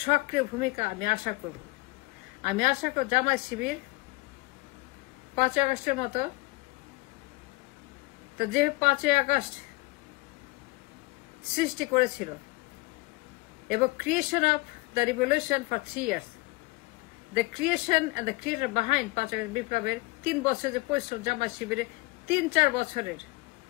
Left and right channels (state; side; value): quieter; right; 23.4 dB